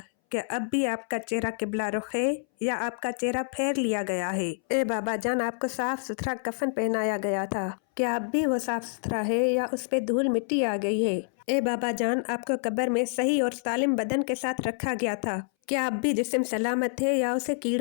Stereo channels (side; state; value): right; silent; 60 dB below the other